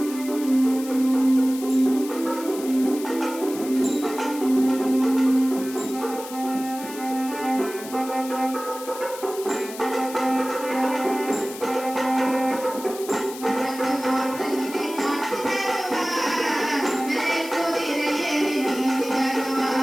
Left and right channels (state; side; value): noise; left; hiss, 14 dB below the sound